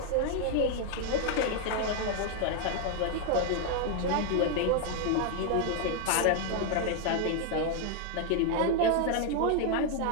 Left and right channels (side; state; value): both; different; correlation 0.00